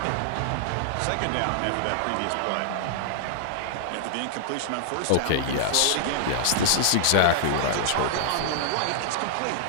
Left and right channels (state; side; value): different; both; correlation -0.01